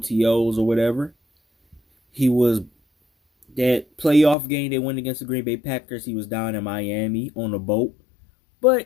or whatever. He was that playoff game they went against the Green Bay Packers. He was down in Miami on a boat.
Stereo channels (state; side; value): drops out; right; at 4.4 s